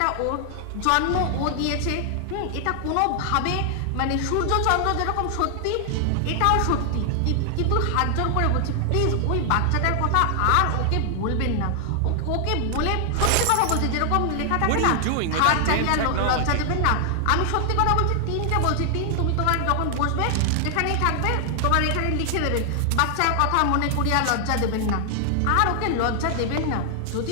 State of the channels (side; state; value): both; different; correlation 0.00